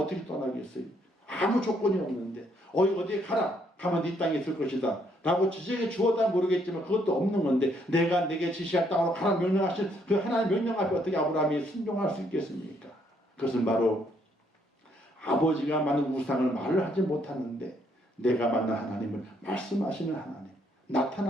떠나겠어요? 아무 조건이 없는데 어디에 가면 네 땅에 있을 것이다 라고 지정해 주었다 모르겠지만 그것도 없는 건데 내가 내게 지시할 땅으로 가라 명령하신 그 하나님 명령 앞에 어떻게 아브라함이 순종할 수 있겠습니까? 그것은 바로 아버지가 만든 우상을 말을 하지 못하는데 내가 만난 하나님을 말씀하시는 하나님,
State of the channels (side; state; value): both; normal; correlation 0.70